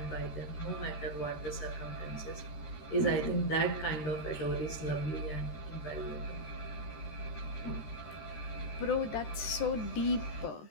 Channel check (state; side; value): late; right; 13 ms